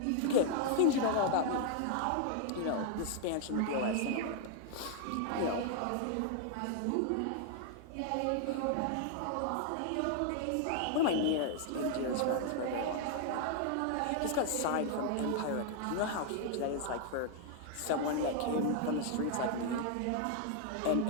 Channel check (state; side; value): different; both; correlation 0.00